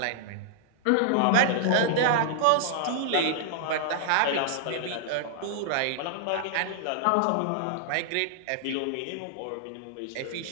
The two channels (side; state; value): both; different; correlation -0.01